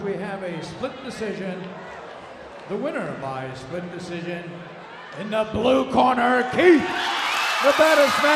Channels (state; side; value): identical; both; correlation 1.00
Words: We have a split decision. The winner by split decision in the blue corner, Keith, the baddest